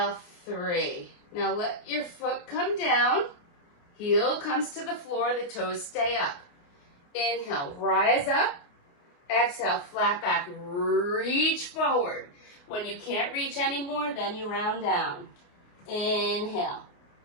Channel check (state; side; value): late; right; 28 ms